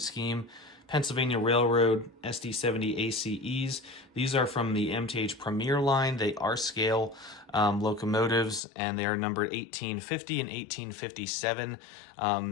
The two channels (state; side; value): drops out; right; at 8.6 s